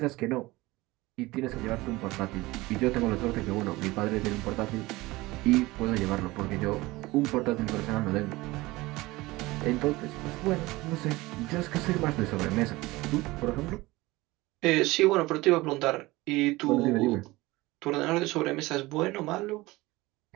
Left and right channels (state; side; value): quieter; left; 20.4 dB